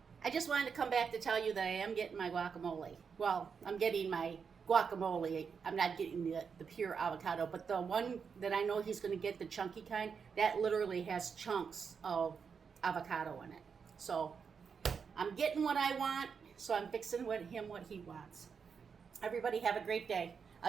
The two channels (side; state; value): left; quieter; 6.1 dB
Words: I just wanted to come back to tell you that I am getting my guacamole. Well, I'm getting my guacamole. I'm not getting the pure avocado, but the one that I know he's going to get, the chunky kind, that literally has chunks of avocado in it. So I'm getting what I want, so I'm fixing what he wants. Everybody have a great day.